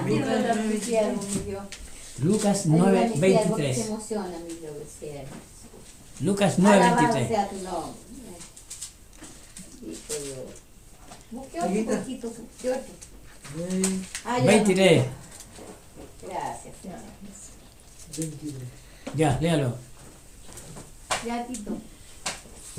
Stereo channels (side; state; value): both; identical; correlation 1.00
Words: Lucas Se 9:23. emociona, mi Dios, siervo. Lucas Alabado 9:23. sea tu nombre. Hijo Dios. Busque otro poquito, busque otro. Ah, ya no. 23. Gracias, Señor. Ya, léalo. Ya, Tito.